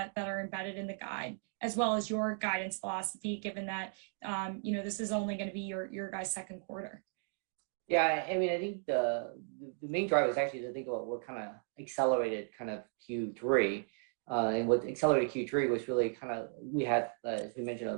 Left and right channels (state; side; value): silent; left; 54 dB below the other